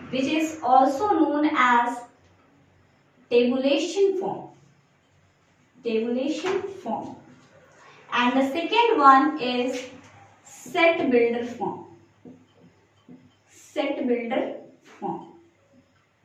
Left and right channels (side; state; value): both; identical; correlation 1.00